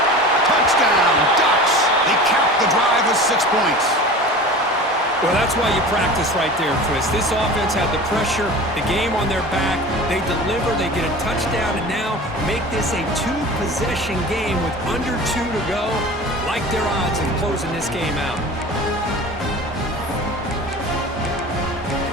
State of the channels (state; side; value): normal; both; correlation 0.36